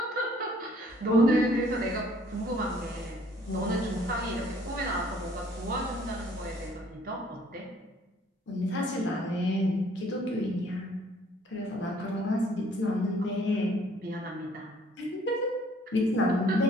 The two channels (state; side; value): normal; both; correlation 0.59